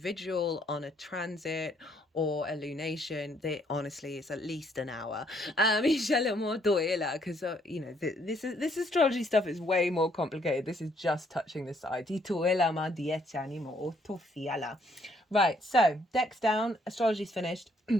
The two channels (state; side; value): normal; both; correlation 0.68